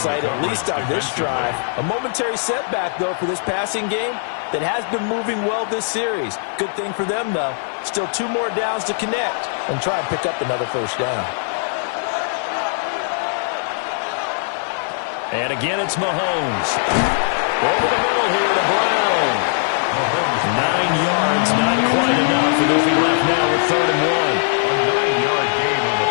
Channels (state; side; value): silent; right; 56 dB below the other